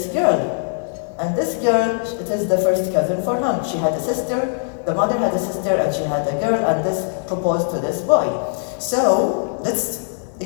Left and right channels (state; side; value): silent; right; digital silence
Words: girl. And this girl, it is the first cousin for him. She had a sister, the mother had a sister, and she had a girl, and this proposed to this boy. So, let's